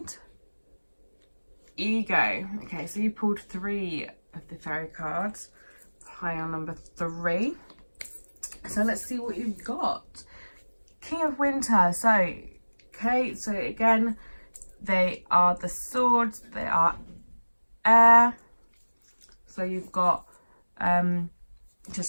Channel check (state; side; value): inverted; both; correlation -1.00